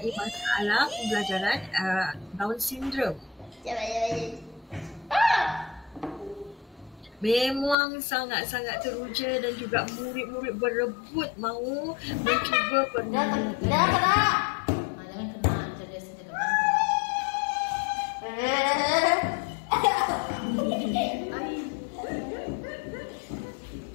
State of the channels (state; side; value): drops out; right; at 7.8 s